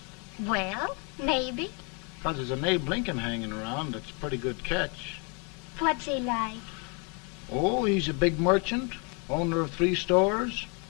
Well, maybe. Because there's an Abe Lincoln hanging around that's a pretty good catch. What's he like? Oh, he's a big merchant, owner of 3 stores,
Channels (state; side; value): quieter; right; 34.3 dB